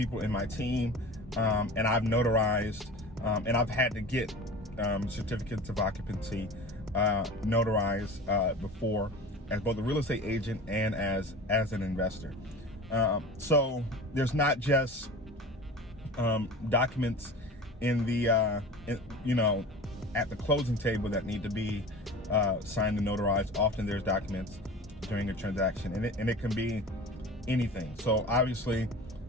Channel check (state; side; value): normal; both; correlation 0.36